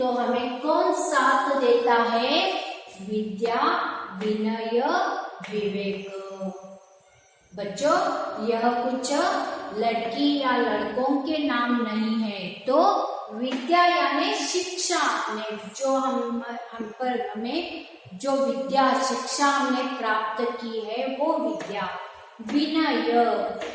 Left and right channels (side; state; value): both; identical; correlation 1.00